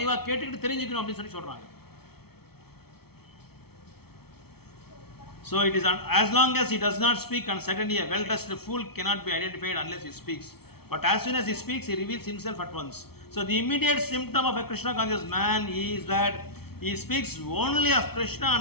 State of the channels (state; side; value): late; right; 0.95 ms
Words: கேட்டுக்கிட்டு தெரிஞ்சுக்கணும் அப்படின்னு சொல்கிறாங்க. So it is as long as he does not speak, and certainly a well-dressed fool cannot be identified unless he speaks. But as soon as he speaks, he reveals himself at once. So the immediate symptom of a Krishna conscious man is that he speaks only of Krishna